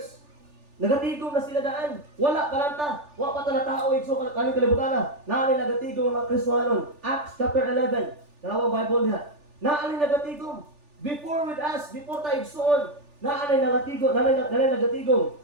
nagatigom na sila daan. Wala kalanta. Wala pa tala tao. So kaning kalibutan na. Naalay nagatigom ang mga Kristohanon. Acts chapter 11. Dalawang Bible niya. Naalay nagatigom. Before with us, before tayo igsoon, naalay nagatigom.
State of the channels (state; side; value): late; left; 3.4 ms